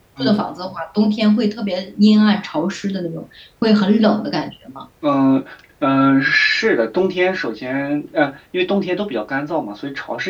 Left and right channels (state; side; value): identical; both; correlation 1.00